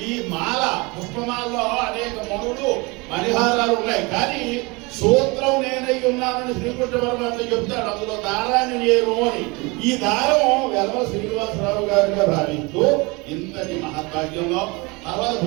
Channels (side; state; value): left; quieter; 26.3 dB